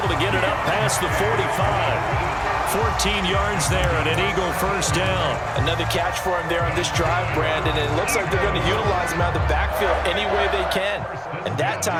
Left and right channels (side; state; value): both; identical; correlation 1.00